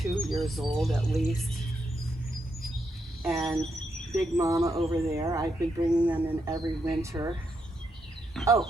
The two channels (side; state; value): both; normal; correlation 0.81